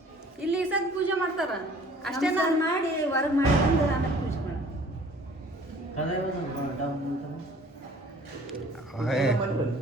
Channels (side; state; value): both; normal; correlation 0.52